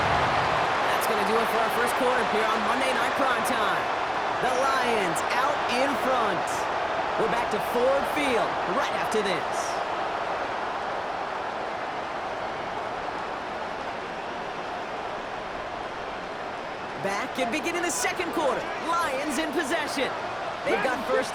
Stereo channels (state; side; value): identical; both; correlation 1.00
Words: That's going to do it for our first quarter here on Monday Night Primetime. The Lions out in front. We're back to Ford Field right after this. Back and beginning the second quarter. Lions in possession. They've got 1st